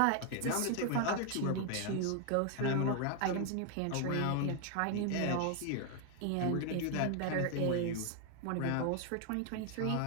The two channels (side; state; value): both; different; correlation 0.00